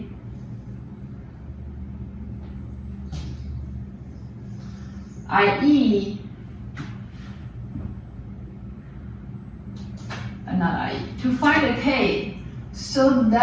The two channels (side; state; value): both; identical; correlation 1.00